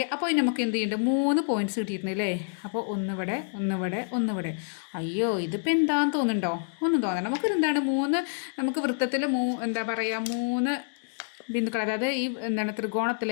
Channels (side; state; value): right; silent; digital silence